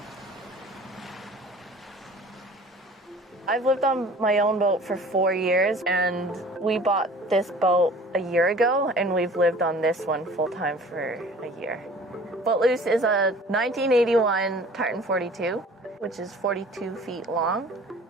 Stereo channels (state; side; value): normal; both; correlation 0.46